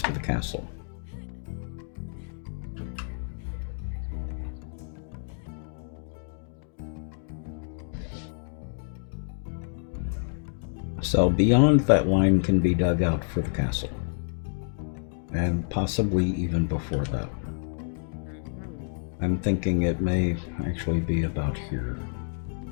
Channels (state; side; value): silent; right; digital silence